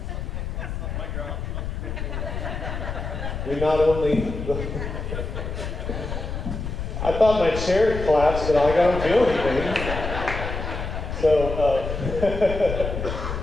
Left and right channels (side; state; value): left; noise; rumble, 5 dB below the sound